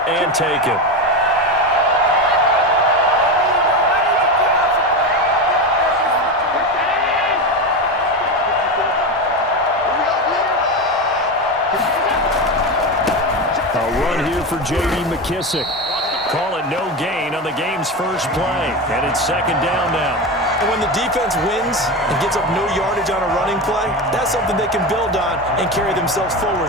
and taken. A run here for J.D. McKissick. Call it no gain on the game's first play. And it's second down now. And when the defense wins and gives up no yardage on a running play, that's something they can build on and carry themselves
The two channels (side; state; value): both; normal; correlation 0.19